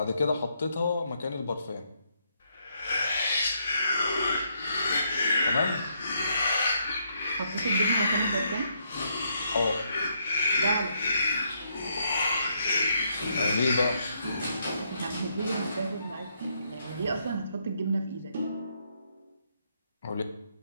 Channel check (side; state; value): both; inverted; correlation -0.75